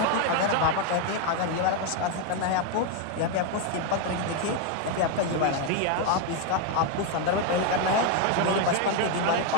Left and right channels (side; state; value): both; different; correlation 0.01